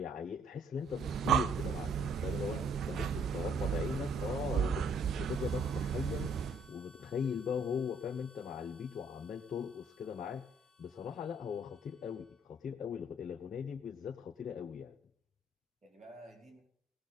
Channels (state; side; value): normal; both; correlation 0.64